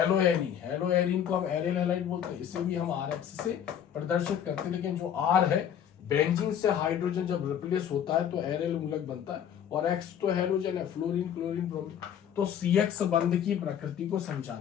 हेलोएरिन को हम एरियल हैलाइड बोलते हैं, इसे भी हम RX से प्रदर्शित करते हैं। लेकिन जो R है, बेंजीन से हाइड्रोजन जब रिप्लेस होता है तो एरियल मूलक बनता है, और X तो हेलोजन है, फ्लोरीन, क्लोरीन, ब्रोमीन। तो CX बंध की प्रकृति को समझाना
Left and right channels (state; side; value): quieter; right; 9.2 dB